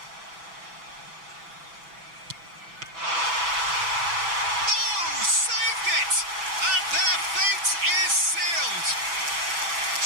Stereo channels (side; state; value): left; late; 6.0 ms